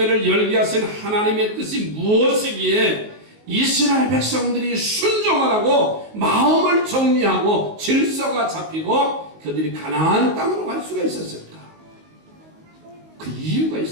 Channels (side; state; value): left; late; 19 ms